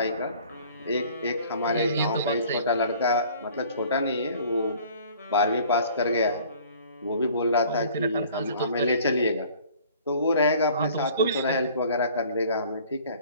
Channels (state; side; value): inverted; both; correlation -0.51